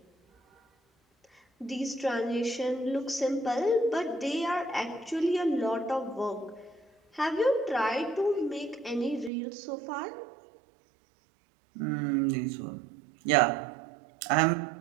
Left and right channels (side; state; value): left; drops out; at 9.3 s